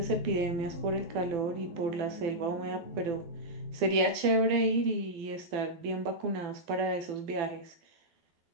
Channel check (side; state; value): left; late; 12 ms